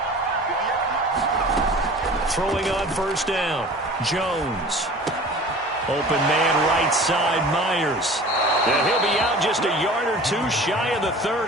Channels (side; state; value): both; normal; correlation 0.42